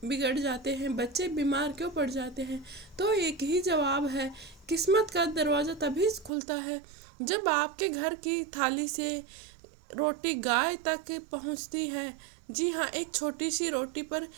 बिगड़ जाते हैं, बच्चे बीमार क्यों पड़ जाते हैं। तो एक ही जवाब है, किस्मत का दरवाज़ा तभी खुलता है जब आपके घर की थाली से रोटी गाय तक पहुंचती है। जी हाँ, एक छोटी सी रोटी पर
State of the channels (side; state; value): left; drops out; at 6.3 s